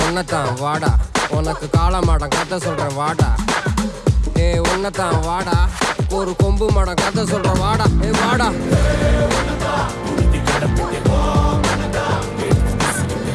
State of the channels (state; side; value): identical; both; correlation 1.00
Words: உன்னதான் வாடா, உனக்கு காளமாடம் கதை சொல்றேன் வாடா. ஏய் உன்னதான் வாடா, ஒரு கொம்பு மாடம் கதை சொல்றேன் வாடா. ஏய் வாடா.